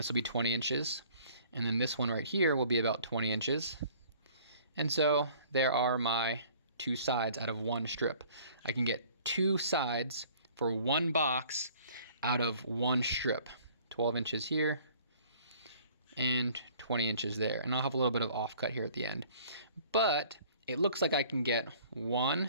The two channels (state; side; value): inverted; both; correlation -0.54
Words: will be 20 inches. And then this one right here will be about 20 inches. And so there are my 2 sides out of one strip. I can get 2 sides for one box out of one strip. 12 inches here and 20 inches there. And I'll have a little bit of offcut here at the end. But it looks like I can get